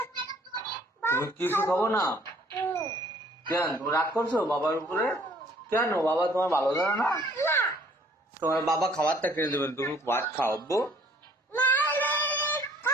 তুমি কিছু খাবো না? হুম। কেন তুমি রাগ করছো বাবার উপরে? কেন বাবা তোমার ভালো জানে না? না, তোমার বাবা খাবারটা কিনে দেবেন, তুমি ভাত খাও আব্বু। না, না,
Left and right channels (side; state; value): both; normal; correlation 0.58